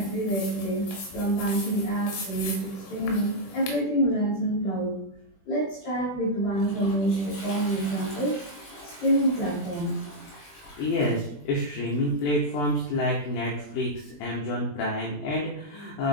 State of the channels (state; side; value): late; right; 20 ms